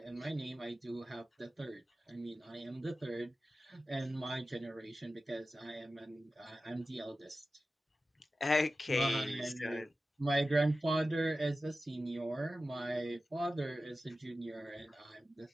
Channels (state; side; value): normal; both; correlation 0.94